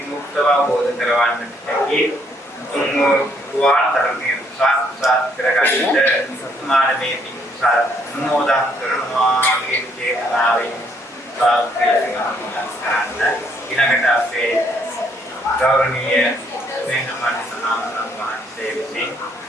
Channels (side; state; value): both; normal; correlation 0.68